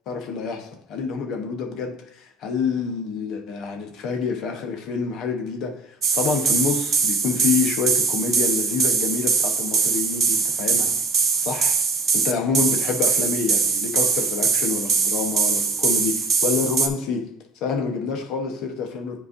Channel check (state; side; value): normal; both; correlation 0.46